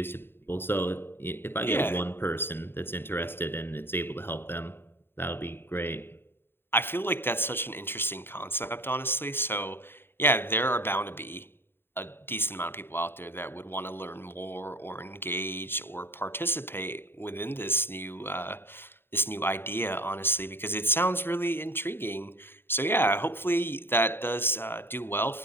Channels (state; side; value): late; right; 0.11 ms